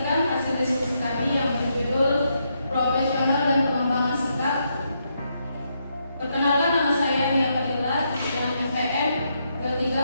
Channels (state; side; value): inverted; both; correlation -0.79